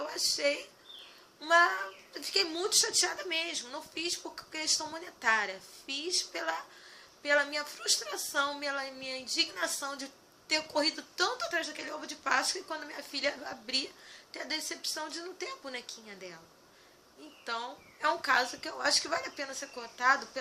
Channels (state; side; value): identical; both; correlation 1.00